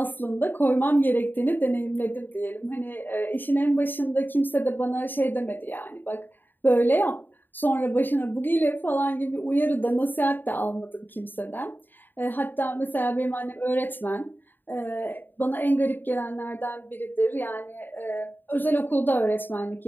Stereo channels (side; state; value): right; late; 0.092 ms